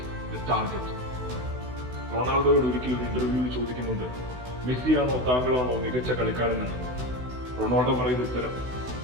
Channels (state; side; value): late; left; 16 ms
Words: the target. റൊണാൾഡോയോട് ഒരിക്കലും ഒരു ഇന്റർവ്യൂവിൽ ചോദിക്കുന്നുണ്ട്, മെസ്സിയാണോ താങ്കളാണോ മികച്ച കളിക്കാരനെന്ന്. റൊണാൾഡോ പറയുന്ന ഉത്തരം,